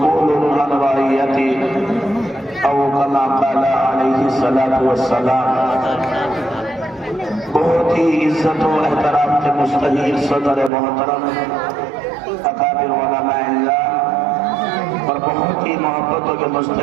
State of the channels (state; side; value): drops out; left; at 10.7 s